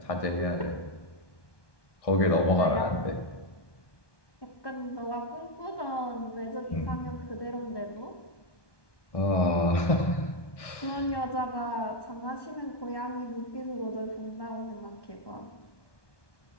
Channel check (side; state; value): right; late; 1.2 ms